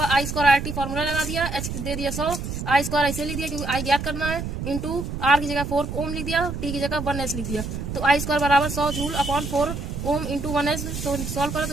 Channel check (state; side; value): noise; right; rumble, 5 dB below the sound